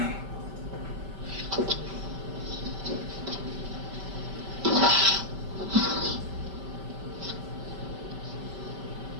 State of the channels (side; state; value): left; late; 5.1 ms